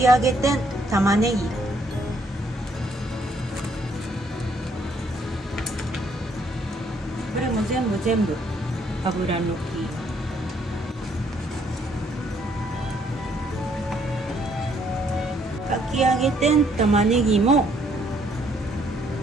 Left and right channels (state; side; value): normal; both; correlation 0.68